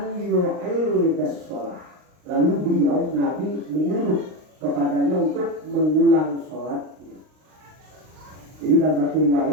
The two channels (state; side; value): late; left; 39 ms